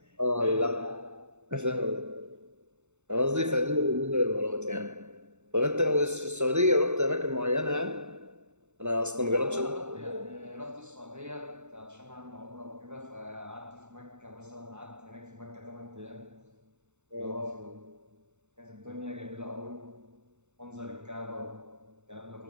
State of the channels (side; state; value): left; late; 0.83 ms